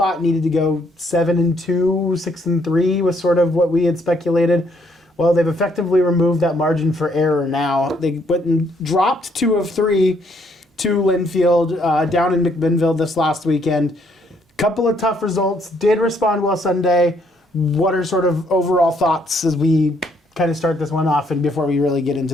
needed to go 7-2, 6-3 was sort of what we had speculated. Well, they've effectively removed that margin for error now. They went and dropped 2 of 3 to Linfield down in McMinnville this last weekend. Couple of tough results. Did respond well Sunday. What are sort of overall thoughts as we kind of start this one off and before we really get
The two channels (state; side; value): normal; both; correlation 0.69